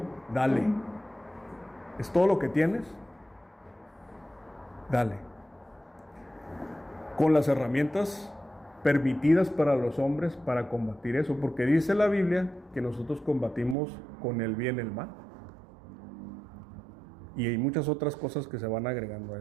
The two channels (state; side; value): drops out; left; at 13.8 s